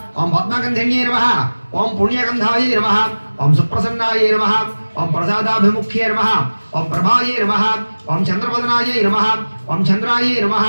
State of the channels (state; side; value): inverted; both; correlation -1.00